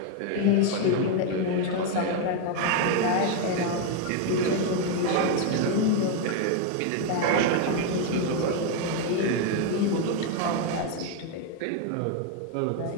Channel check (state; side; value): different; both; correlation 0.01